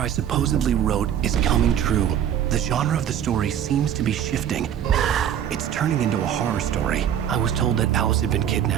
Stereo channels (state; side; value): quieter; left; 9.7 dB